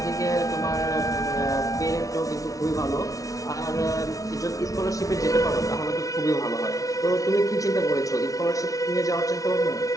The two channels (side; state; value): right; late; 0.17 ms